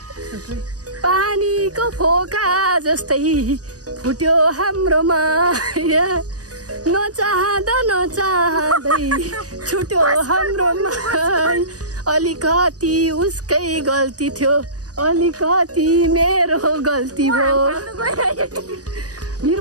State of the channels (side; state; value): left; late; 0.68 ms